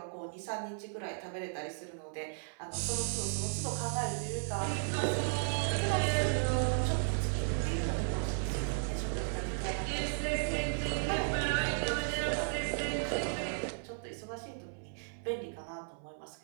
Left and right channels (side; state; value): left; silent; 54 dB below the other